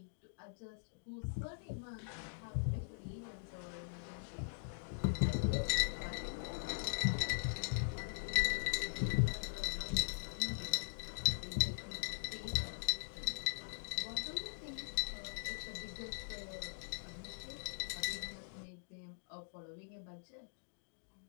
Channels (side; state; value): right; silent; digital silence